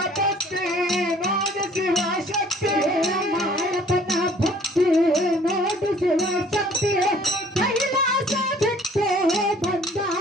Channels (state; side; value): normal; both; correlation 0.55